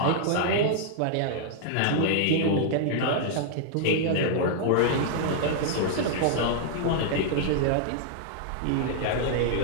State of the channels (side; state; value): both; different; correlation -0.01